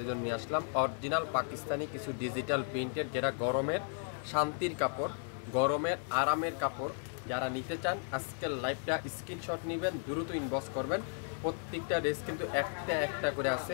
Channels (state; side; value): silent; right; 55 dB below the other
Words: জন্য নিয়ে আসলাম অরিজিনাল পাকিস্তানি কিছু ডিজিটাল প্রিন্টের, যেটা গরমের শান্তির কাপড়, গরমের আরামের কাপড়। যারা নিতে চান আজকের লাইভটা স্ক্রিনশট নেবেন, দ্রুত ইনবক্স করবেন। প্রত্যেকটা ড্রেস কিন্তু একটা একটা করে আছে,